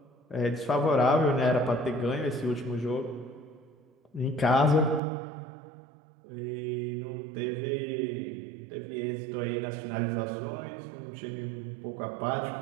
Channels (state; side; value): drops out; left; at 5.0 s